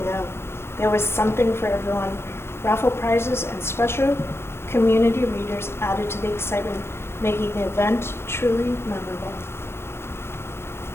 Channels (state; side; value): late; right; 0.12 ms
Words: There was something for everyone. Raffle prizes and special community readers added to the excitement, making the event truly memorable.